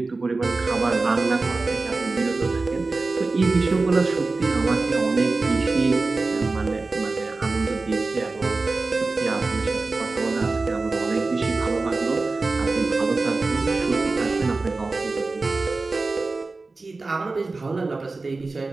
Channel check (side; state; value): left; quieter; 3.6 dB